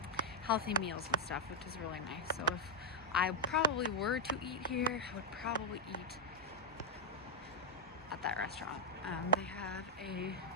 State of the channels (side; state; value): both; normal; correlation -0.02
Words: meals and stuff, which is really nice. So if I probably were to eat here, I would probably eat at that restaurant. They have a